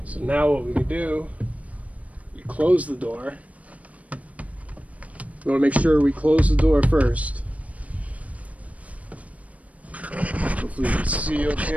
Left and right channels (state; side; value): late; left; 0.068 ms